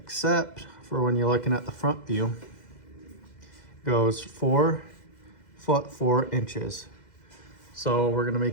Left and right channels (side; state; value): right; late; 2.0 ms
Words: for when you're looking at the front view, it goes 4 foot 4 inches. So we're gonna